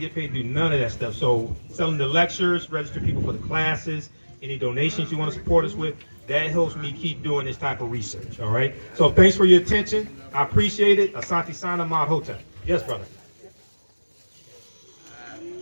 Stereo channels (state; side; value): inverted; both; correlation -1.00